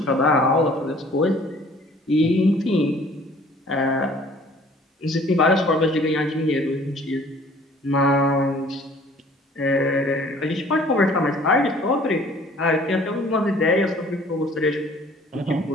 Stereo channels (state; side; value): normal; both; correlation 0.53